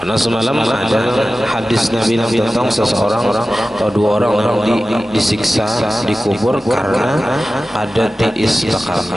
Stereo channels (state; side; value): normal; both; correlation 0.95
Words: semalam ada hadis Nabi tentang seseorang atau 2 orang yang disiksa dikubur karena ada tiis